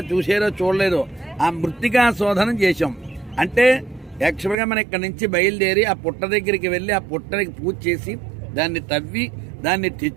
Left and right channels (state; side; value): drops out; left; at 4.5 s